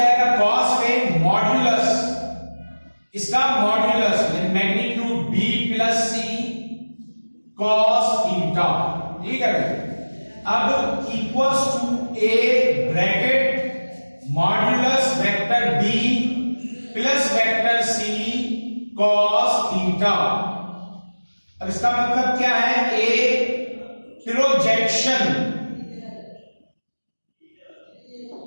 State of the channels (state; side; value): inverted; both; correlation -1.00